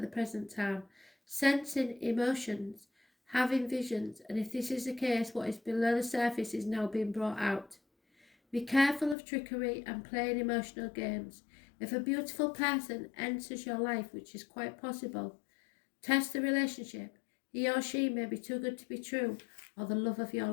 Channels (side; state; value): right; drops out; at 9.2 s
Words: the present time, sensing emotions, having visions, and if this is the case, what is below the surface is now being brought out. Be careful of trickery and playing emotional games. If a beautiful person enters your life, which is quite possible, test the relationship. He or she may be too good to be true, or the love of your